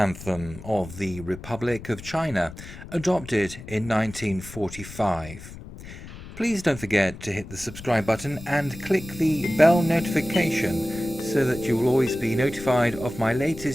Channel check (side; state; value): left; noise; rumble, 14 dB below the sound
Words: of the Republic of China, adopted in 1945. Please don't forget to hit the subscribe button and click the bell notification so that you will always be notified of my